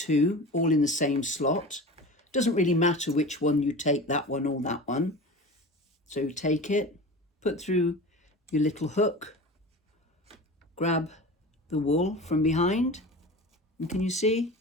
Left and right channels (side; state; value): both; normal; correlation 0.33